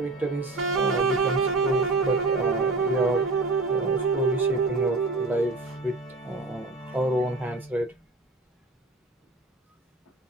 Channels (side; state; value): left; quieter; 3.2 dB